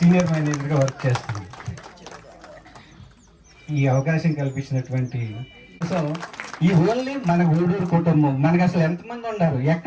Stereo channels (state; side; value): identical; both; correlation 1.00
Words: మేనేజర్గా వర్క్ చేస్తాను. ఈ అవకాశం కల్పించినటువంటి సో ఈ ఓన్లీ మన గూడూరు కుటుంబం, మనకు అసలు ఎంతమంది ఉన్నారు,